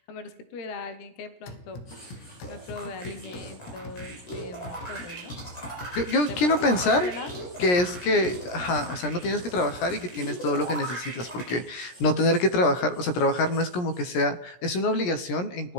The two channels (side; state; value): right; late; 17 ms